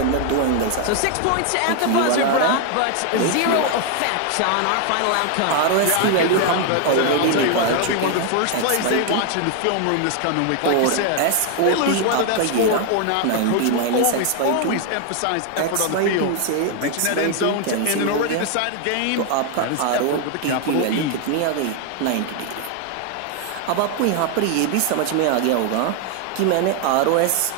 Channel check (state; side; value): different; both; correlation 0.00